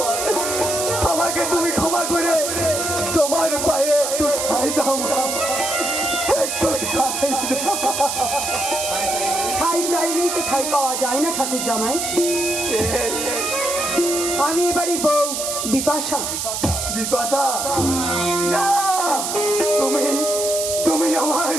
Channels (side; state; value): right; noise; hiss, 3 dB below the sound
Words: আমাকে তুমি ক্ষমা করে তোমার পায়ে একটু ঠাই দাও মা, একটু ঠাই দাও। ঠাই চাইলেই তো ঠাই পাওয়া যায় না ঠাকুর জামাই। আমি এবারই বউ বিপাশা। বিপাশা না, তুমি তুমি আমার